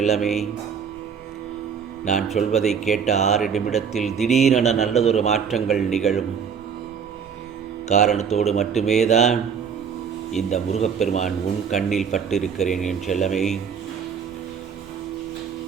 நான் சொல்வதை கேட்ட 6 நிமிடத்தில் திடீரென நல்லதொரு மாற்றங்கள் நிகழும் காரணத்தோடு மட்டுமே தான் இந்த முருகப்பெருமான் உன் கண்ணில் பட்டிருக்கிறேன். என் செல்லமே,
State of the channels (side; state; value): left; quieter; 6.9 dB